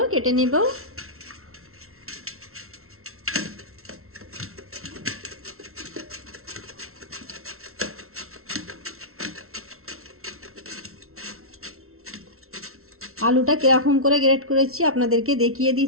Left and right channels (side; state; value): left; late; 0.63 ms